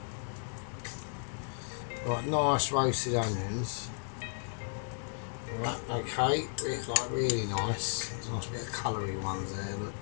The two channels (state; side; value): silent; right; digital silence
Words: Like nice roasted onions. Right, okay, it's like really nice. There's a nice bit of coloury ones there, look.